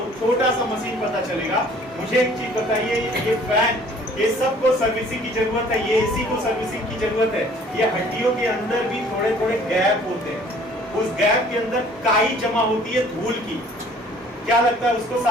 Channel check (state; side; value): normal; both; correlation 0.54